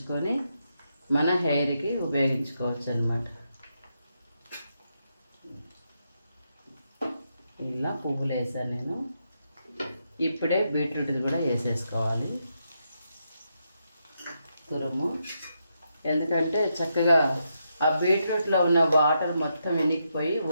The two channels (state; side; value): inverted; both; correlation -0.82